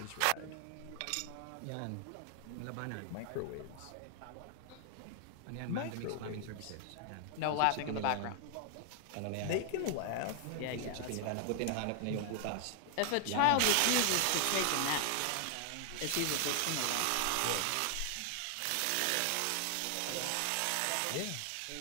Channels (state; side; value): different; both; correlation 0.00